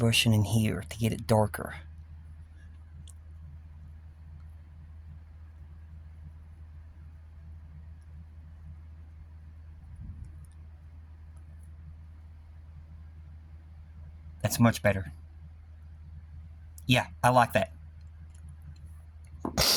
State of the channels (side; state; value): both; identical; correlation 1.00